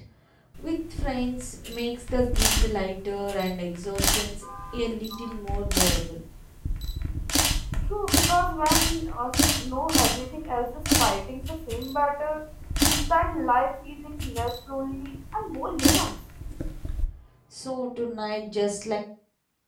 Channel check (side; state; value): both; identical; correlation 1.00